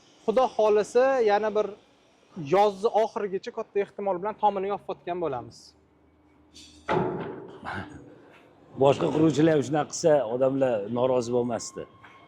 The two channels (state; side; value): identical; both; correlation 1.00